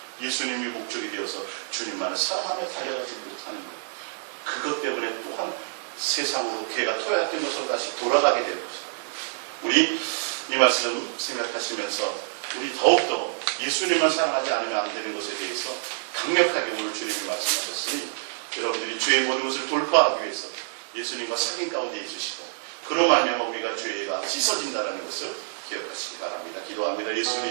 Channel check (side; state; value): left; silent; digital silence